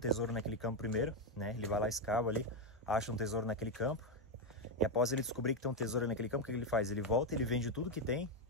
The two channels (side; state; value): both; normal; correlation 0.06